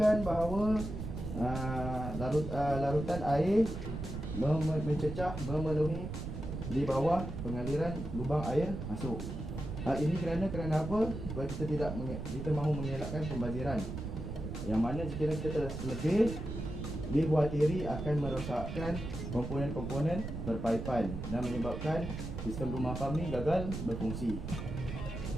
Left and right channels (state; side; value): noise; right; rumble, 6 dB below the sound